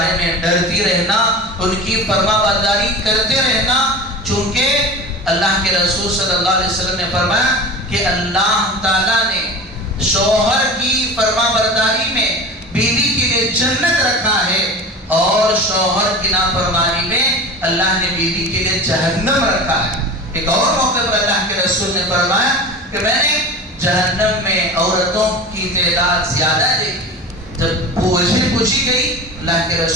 میں ڈرتی رہنا، ان کی فرما برداری کرتے رہنا، چونکہ اللہ کے رسول صلی اللہ علیہ وسلم نے فرمایا کہ اللہ تعالیٰ نے شوہر کی فرما برداری میں بیوی کے لیے جنت رکھا ہے، اور شوہر کی نافرمانی میں اللہ نے بیوی کے لیے جہنم رکھا ہے۔ ایک اور موقع پر اللہ کے رسول نے فرمایا کہ میں نے جہنم میں عورتوں کی تعداد زیادہ دیکھی۔ جب پوچھی گئی اللہ کے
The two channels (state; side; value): normal; both; correlation 0.33